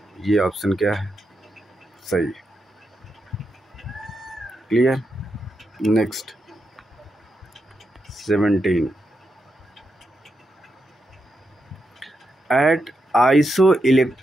ये ऑप्शन क्या है? सही। Clear. Next 17 at iso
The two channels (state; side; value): normal; both; correlation 0.85